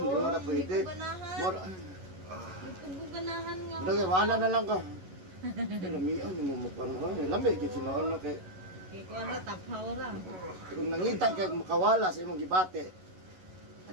mo na pwede. Ganahan. More, Ganahan nga. Dagay, wala na lang ka. Lamian, yung mumukha na. Lamig, yung sinoon na kay... Kaya ko ano, taphaw ra. Kung nangita ka makawala sa imong gibate,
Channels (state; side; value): late; left; 11 ms